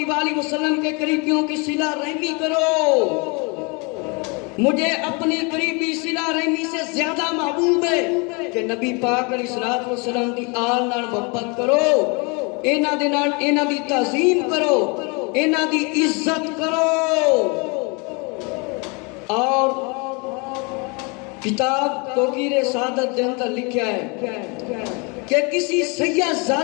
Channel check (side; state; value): right; quieter; 31.0 dB